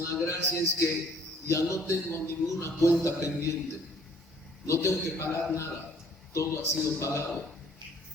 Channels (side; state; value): both; normal; correlation 0.59